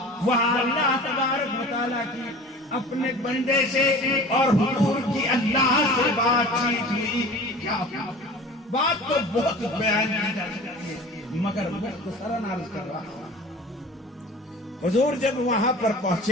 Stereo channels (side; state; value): both; normal; correlation 0.40